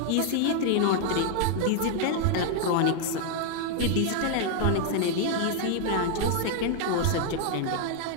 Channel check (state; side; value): different; both; correlation 0.00